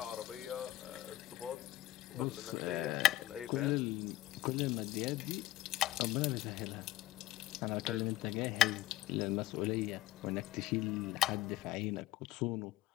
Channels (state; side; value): quieter; right; 15.5 dB